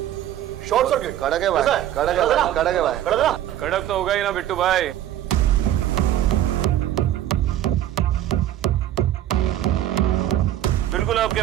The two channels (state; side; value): quieter; left; 12.3 dB